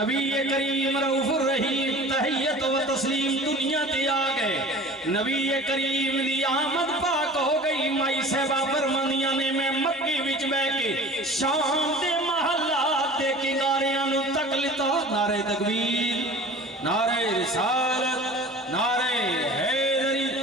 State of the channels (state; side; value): normal; both; correlation 0.42